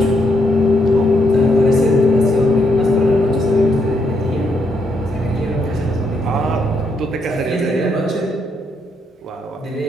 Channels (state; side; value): normal; both; correlation 0.77